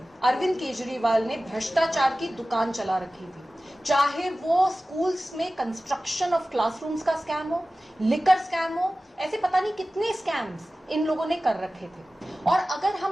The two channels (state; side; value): normal; both; correlation 0.96